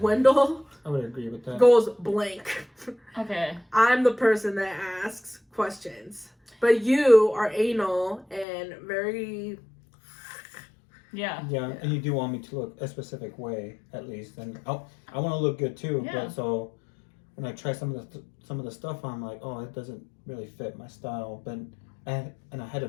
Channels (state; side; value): drops out; right; at 8.5 s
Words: I would agree with that. goes blank. Okay. I'm the person that asks questions. But you are anal and very... Yeah. Yeah, and you do want me to look a specific way, at least, and I want to look good too. Yeah. But so when I try some of the stuff, I'm like, oh, it doesn't really fit my style. But I had a